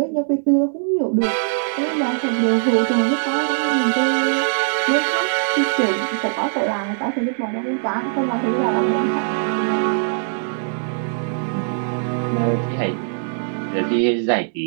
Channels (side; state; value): left; silent; 65 dB below the other